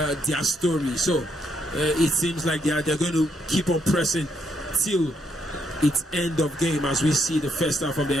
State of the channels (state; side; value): normal; both; correlation 0.75